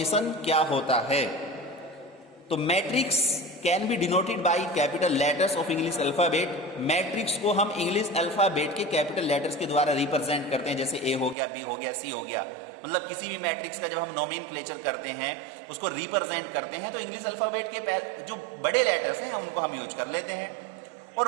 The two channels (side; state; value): left; drops out; at 11.4 s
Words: क्या होता है? तो matrix can be denoted by capital letters of English alphabet. Matrix को हम इंग्लिश अल्फाबेट के कैपिटल लेटर्स के द्वारा रिप्रेजेंट करते हैं, जैसे A हो गया, B हो गया, C हो गया। मतलब किसी भी मैट्रिक्स का जब हम नोमेनक्लेचर करते हैं, उसको रिप्रेजेंट करते हैं, तो इंग्लिश अल्फाबेट के जो बड़े लेटर्स हैं उनको हम यूज कर लेते हैं।